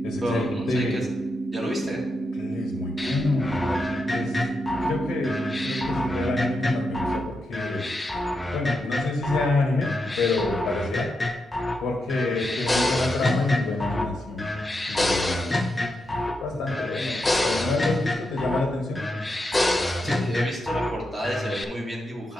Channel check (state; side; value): normal; both; correlation 0.85